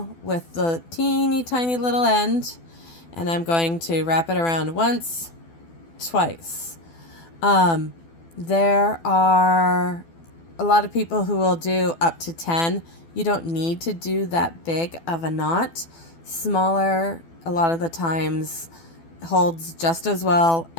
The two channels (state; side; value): late; right; 12 ms